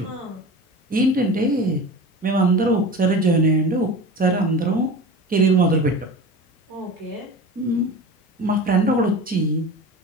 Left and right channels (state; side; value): normal; both; correlation 0.33